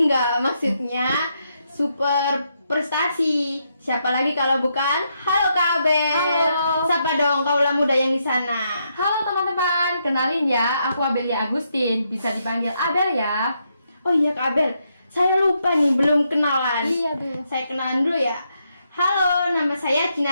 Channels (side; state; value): both; inverted; correlation -0.79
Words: maksudnya super prestasi. Siapa lagi kalau bukan Halo Kak Abel. Halo. Sapa dong kaula muda yang di sana. Halo teman-teman, kenalin ya, aku Abelia Agustin, bisa dipanggil Abel ya. Oh iya Kak Abel, saya lupa nih, belum kenalan. Iya tuh. Saya kenalan dulu ya. Halo, nama saya